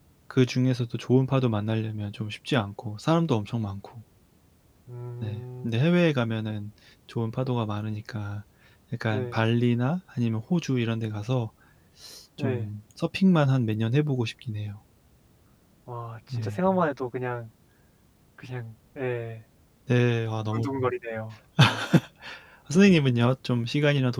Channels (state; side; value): identical; both; correlation 1.00